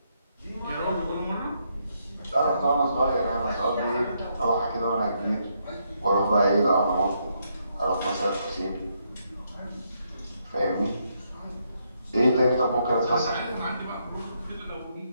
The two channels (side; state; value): both; inverted; correlation -0.77